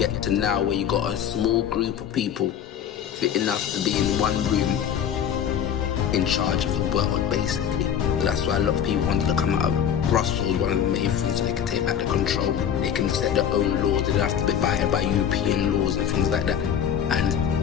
to now where you got a small group of people fit enough to be in one room in charge of the world, basically. So that's why a lot of people wanted to come out of Brussels, one of the main things, so they can take back the control. They can set their own laws, they don't have to be abided by European laws and things like that.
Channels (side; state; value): right; quieter; 8.9 dB